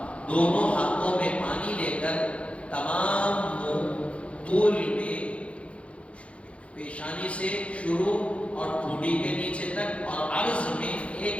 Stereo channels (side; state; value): right; late; 0.062 ms